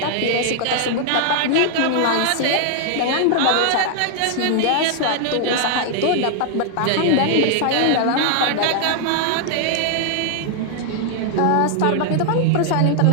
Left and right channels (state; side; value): different; both; correlation 0.00